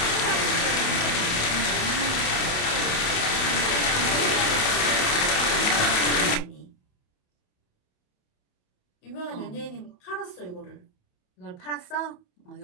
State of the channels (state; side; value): late; right; 28 ms